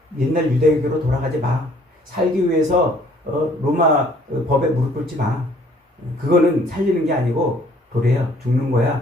옛날 유대교로 돌아가지 마. 살기 위해서 로마 법에 무릎 꿇지 마. 그거는 살리는 게 아니고 도래야, 죽는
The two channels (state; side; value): normal; both; correlation 0.59